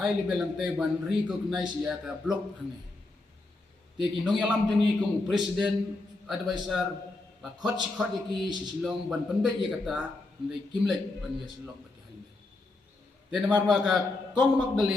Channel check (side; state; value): right; quieter; 3.1 dB